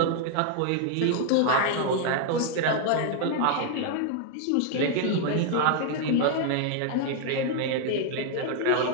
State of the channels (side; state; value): both; different; correlation 0.00